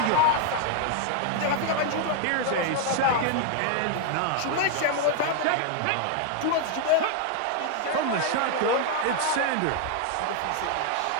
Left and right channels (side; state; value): both; different; correlation 0.00